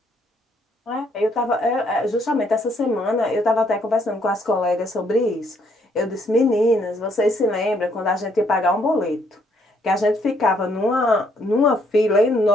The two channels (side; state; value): both; normal; correlation 0.69